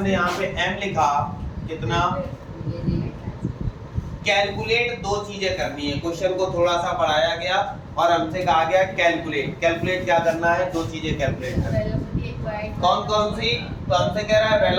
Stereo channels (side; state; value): both; identical; correlation 1.00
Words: यहाँ पे m लिखा, कितना, कैलकुलेट 2 चीजें करनी है। क्वेश्चन को थोड़ा सा पढ़ाया गया और हमसे कहा गया कैलकुलेट। कैलकुलेट क्या करना है, 2 चीजें कैलकुलेट करनी है। कौन कौन सी, तो हमसे कह रहा है